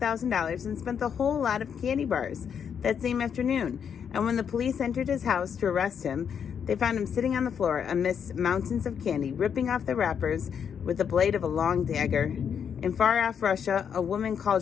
and spent the whole lot of candy bars that same afternoon. And when the police entered his house to arrest him, they found him sitting on the floor amidst mountains of candy, ripping off the wrappers with the blade of a long dagger. In far-off Russia, a woman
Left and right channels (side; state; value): right; quieter; 7.6 dB